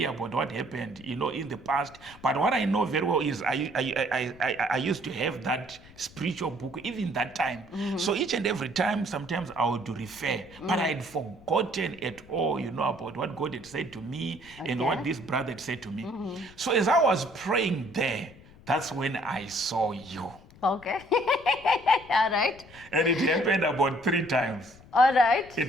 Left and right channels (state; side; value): noise; left; rumble, 23 dB below the sound